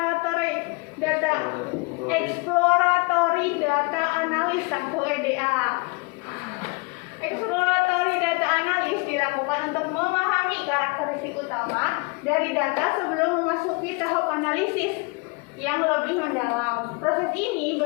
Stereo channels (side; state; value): right; quieter; 29.0 dB